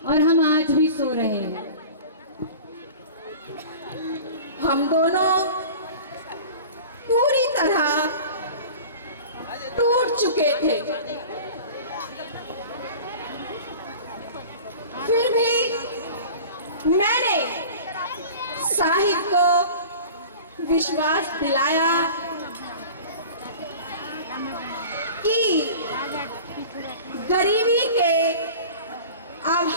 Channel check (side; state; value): both; inverted; correlation -0.39